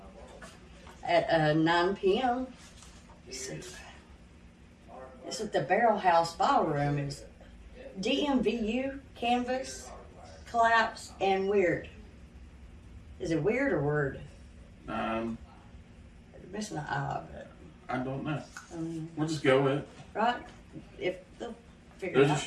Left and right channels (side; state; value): both; identical; correlation 1.00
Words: at 9 p.m. It's at the Barrel House Ballroom. It's DMVU, Canvas, Collapse, and Weird. Is it weird or word? Missing an I, but I don't know. We'll just go with it. right? If they'll figure There's it a out.